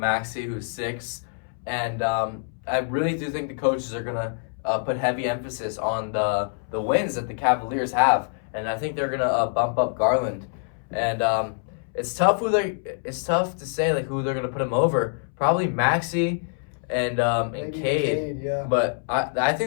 Maxey, who's 6. And I really do think the coaches are going to put heavy emphasis on the wins that the Cavaliers have. And I think they're going to bump up Garland. And it's tough to say like who they're gonna put him over. Probably Maxey and Cade. Yeah. But I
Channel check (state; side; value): silent; right; 61 dB below the other